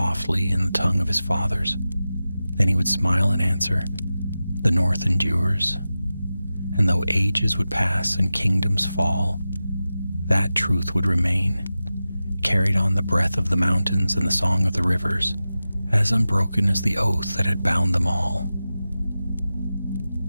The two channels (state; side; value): inverted; both; correlation -0.94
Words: in the tongue of his fathers. Then he would smile and answer, "The North endures." And though ages would pass and kingdoms fall, that truth would remain, carried on the breath of the mountains and the song of the rivers, as unbroken as the oath that had bound them all.